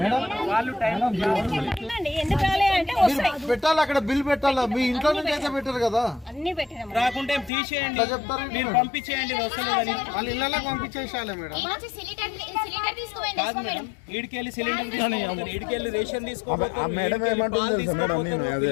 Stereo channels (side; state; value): right; drops out; at 7.5 s